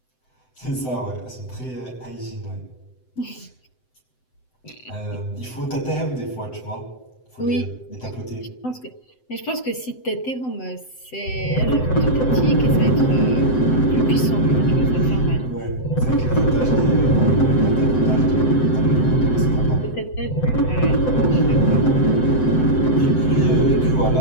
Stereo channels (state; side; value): late; right; 7.8 ms